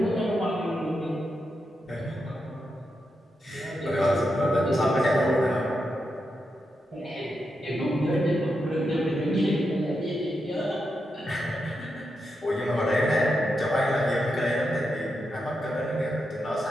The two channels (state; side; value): normal; both; correlation 0.86